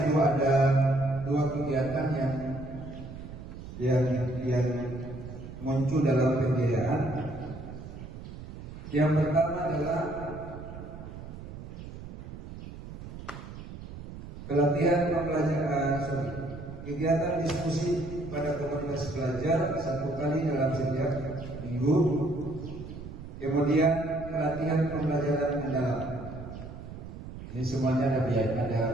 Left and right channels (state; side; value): noise; right; rumble, 12 dB below the sound